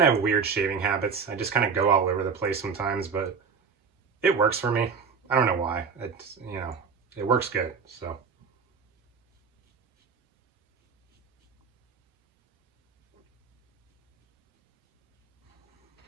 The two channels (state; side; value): quieter; left; 5.7 dB